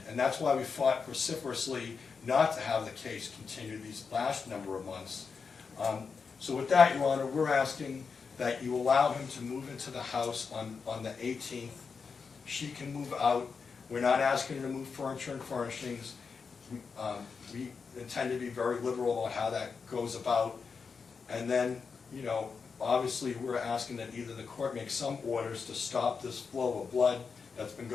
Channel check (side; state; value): right; quieter; 5.4 dB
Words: And that's why we fought vociferously not to have the case continue these last number of months. So with that, Your Honor, we're asking that you allow him to move into the house on the 18th. She can move out. We're not asking her to move furniture and furnishings. We intend to be very liberal about how that goes about. And then, you know, obviously we're asking that either the court make some orders to stop this flow of blood that's been